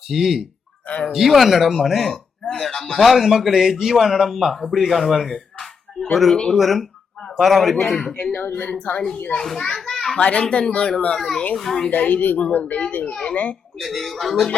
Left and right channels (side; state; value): right; quieter; 5.9 dB